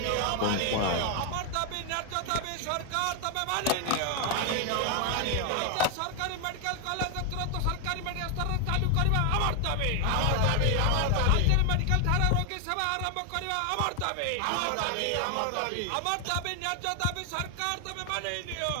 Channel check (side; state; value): both; different; correlation 0.00